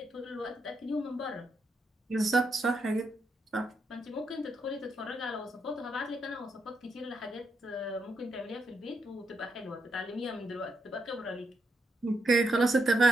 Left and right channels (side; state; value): both; normal; correlation 0.80